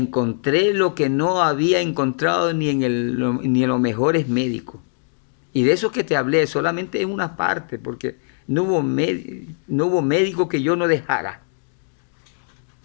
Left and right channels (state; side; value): silent; right; digital silence